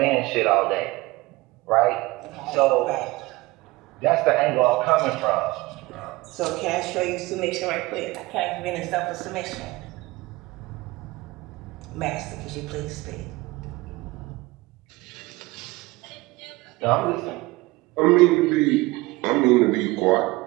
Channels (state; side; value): quieter; left; 21.2 dB